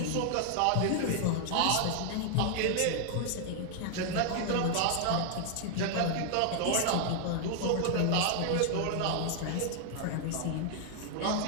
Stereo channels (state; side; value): different; both; correlation 0.00